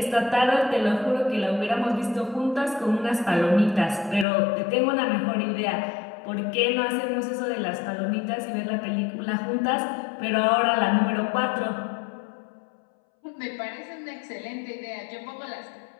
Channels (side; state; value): right; drops out; at 4.2 s